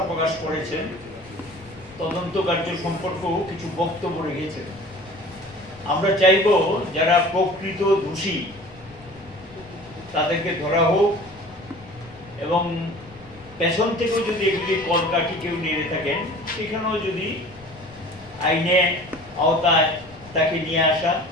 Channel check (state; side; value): noise; left; rumble, 23 dB below the sound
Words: প্রকাশ করেছেন, তদন্ত কার্য সম্পর্কেও কিছু বক্তব্য রেখেছেন। আমরা চাইব যারা প্রকৃত দোষী তাদেরকে ধরা হোক, এবং পেছন থেকেও যদি এগুলি কলকাঠি কেউ নিয়ে থাকেন সেখানেও যদি আইনে আওতায় তাকে নিয়ে আসা,